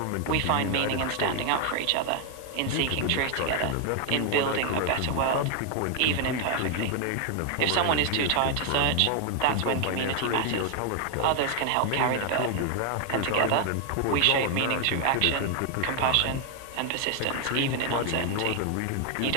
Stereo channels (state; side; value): different; both; correlation 0.00